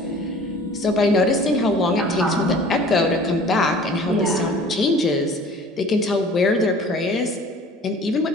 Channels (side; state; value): both; normal; correlation 0.47